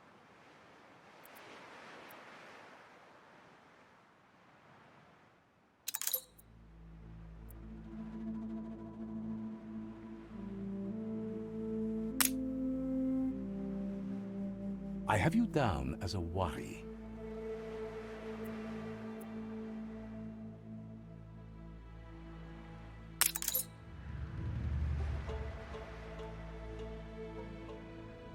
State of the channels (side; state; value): both; identical; correlation 1.00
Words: I have you down as a Wari.